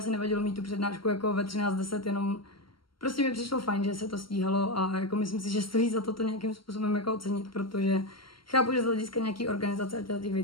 nevadilo mít tu přednášku jako ve 13:10, jenom prostě mi přišlo fajn, že se to stíhalo a jako myslím si, že stojí za to nějakým způsobem jako ocenit, protože chápu, že z hlediska nějaký organizace a těch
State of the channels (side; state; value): right; late; 0.74 ms